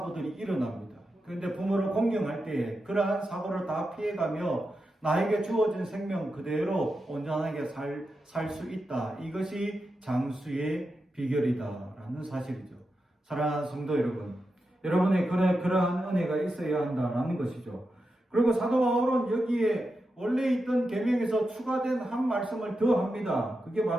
일어납니다. 그런데 부모를 공경할 때 그러한 사고를 다 피해가며 나에게 주어진 생명 그대로 온전하게 살 수 있다. 이것이 장수의 비결이다라는 사실이죠. 사랑하는 성도 여러분, 여러분의 그러한 은혜가 있어야 한다라는 것이죠. 그리고 사도 바울은 여기에 원래 있던 계명에서 추가된 한 말씀을 더 합니다. 그게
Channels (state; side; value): normal; both; correlation 0.89